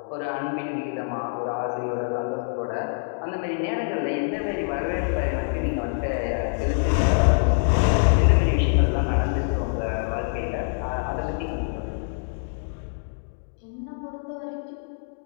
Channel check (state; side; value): silent; right; digital silence